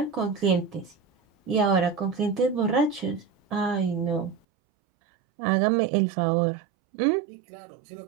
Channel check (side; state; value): left; drops out; at 4.4 s